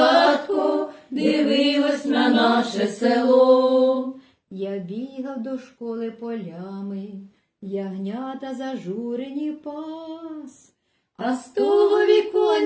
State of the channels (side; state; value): both; identical; correlation 1.00